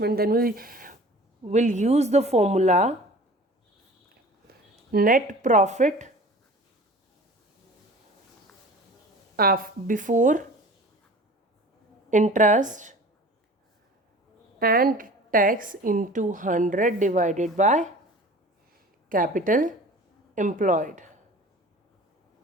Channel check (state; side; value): normal; both; correlation 0.42